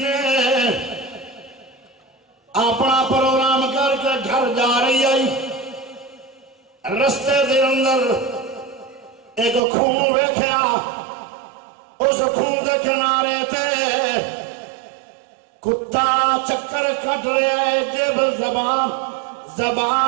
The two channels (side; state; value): left; drops out; at 9.6 s